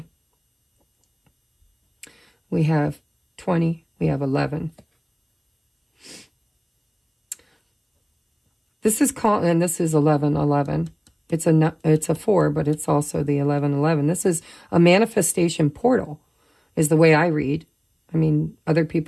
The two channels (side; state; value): both; identical; correlation 1.00